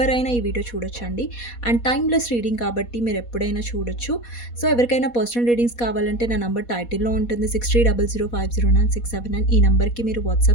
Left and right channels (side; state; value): right; late; 4.2 ms